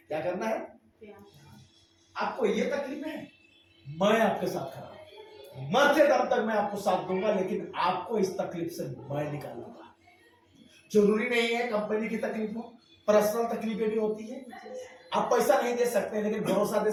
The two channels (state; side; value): identical; both; correlation 1.00